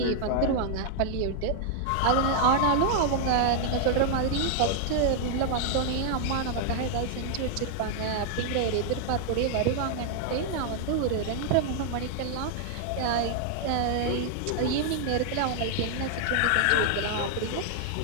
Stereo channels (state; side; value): different; both; correlation 0.00